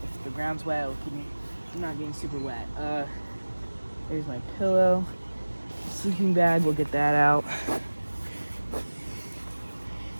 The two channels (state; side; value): inverted; both; correlation -1.00